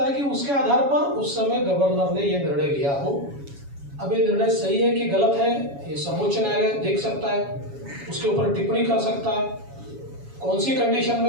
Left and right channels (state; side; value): late; left; 7.2 ms